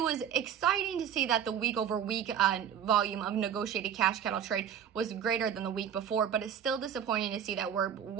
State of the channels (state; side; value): quieter; left; 8.9 dB